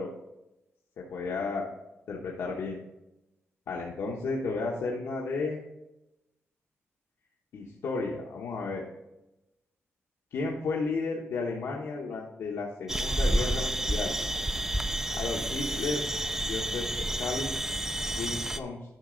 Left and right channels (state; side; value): normal; both; correlation 0.79